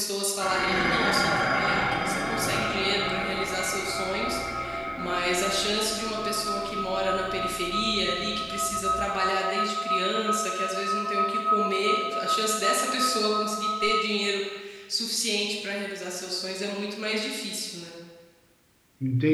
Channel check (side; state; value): both; identical; correlation 1.00